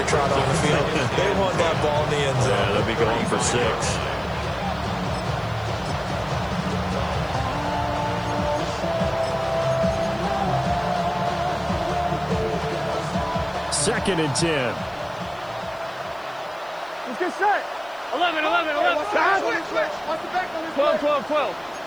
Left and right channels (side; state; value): left; noise; hiss, 29 dB below the sound